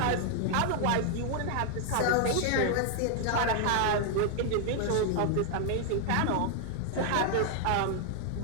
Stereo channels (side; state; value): both; different; correlation 0.00